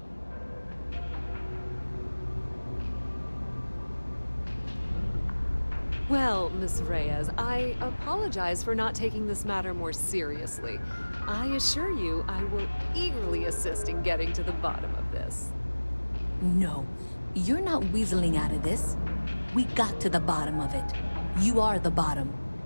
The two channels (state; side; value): inverted; both; correlation -1.00